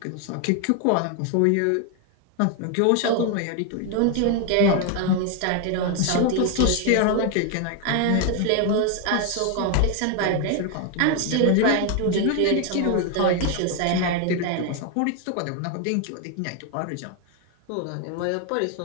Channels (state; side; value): different; both; correlation 0.01